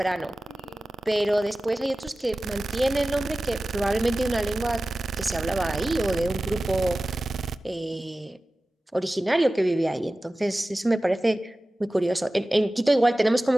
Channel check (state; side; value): normal; both; correlation 0.96